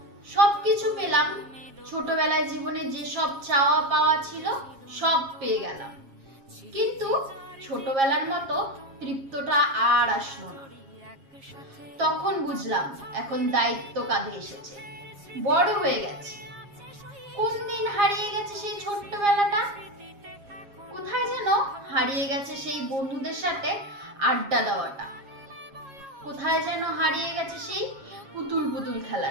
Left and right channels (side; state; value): left; late; 7.4 ms